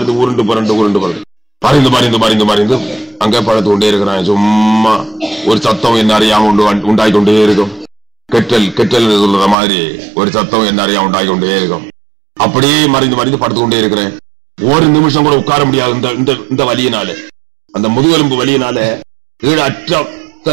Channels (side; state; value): left; drops out; at 9.6 s